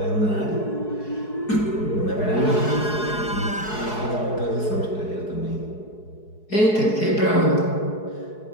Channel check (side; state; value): right; late; 4.7 ms